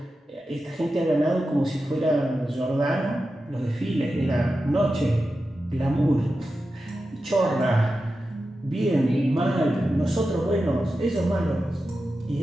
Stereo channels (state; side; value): normal; both; correlation 0.91